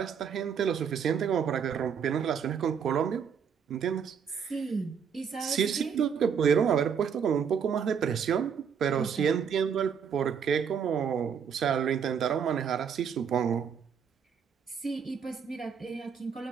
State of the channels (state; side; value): quieter; left; 7.2 dB